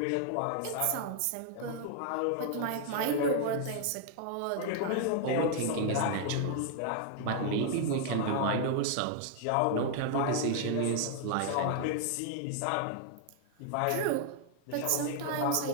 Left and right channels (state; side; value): different; both; correlation 0.00